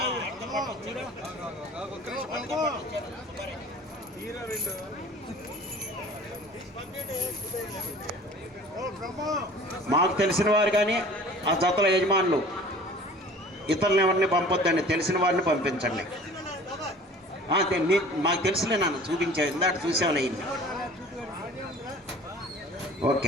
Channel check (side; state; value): both; normal; correlation 0.45